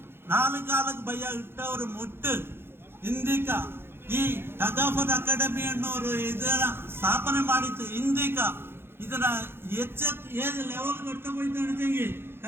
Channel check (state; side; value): late; left; 0.11 ms